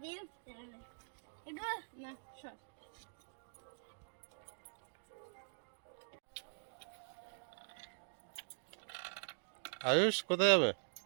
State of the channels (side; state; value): left; silent; digital silence